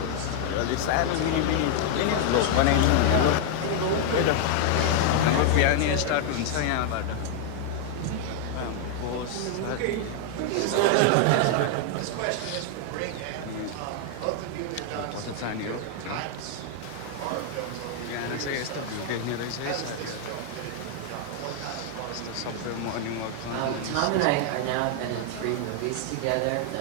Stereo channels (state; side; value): different; both; correlation 0.00